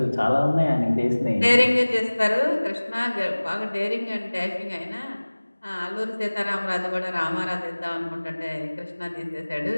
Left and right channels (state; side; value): inverted; both; correlation -1.00